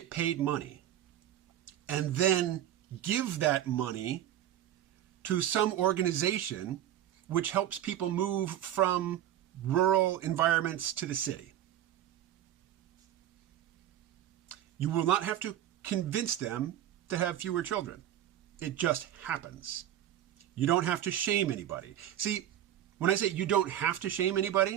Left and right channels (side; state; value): left; quieter; 11.6 dB